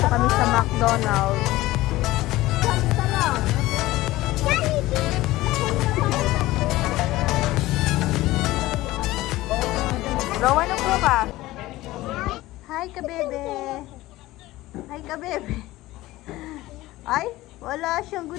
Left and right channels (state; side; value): quieter; right; 17.6 dB